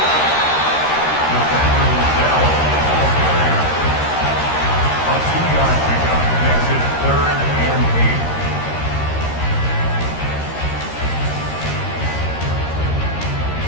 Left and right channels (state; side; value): late; right; 13 ms